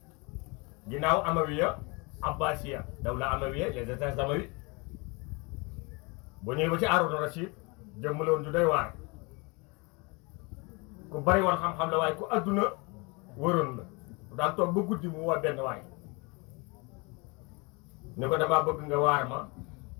ginnaaw Amawiya Abbasiya dawla Amawiya les états amawi boo ñëwee ba ci Haaruna Rasiid jëmm la woon ju doy waar ku bari woon xam-xam la waaye ku adduna wëroon la daan toog ba guddi mu woo benn waay ni ko damaa bëgg nga waar ma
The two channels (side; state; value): right; quieter; 28.8 dB